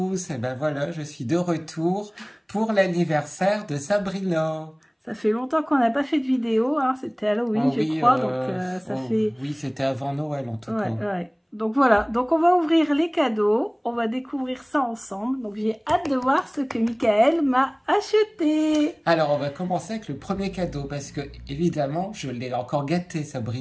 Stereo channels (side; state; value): both; identical; correlation 1.00